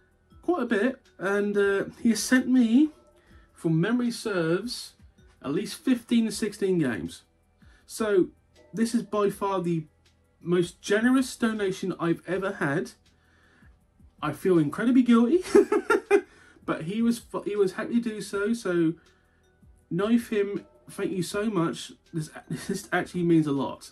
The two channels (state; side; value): identical; both; correlation 1.00